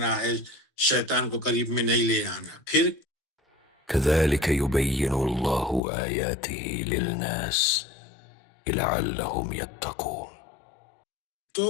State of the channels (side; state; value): right; drops out; at 5.8 s